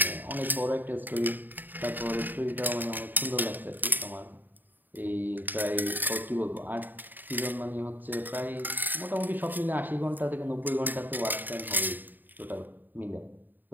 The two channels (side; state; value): left; late; 0.089 ms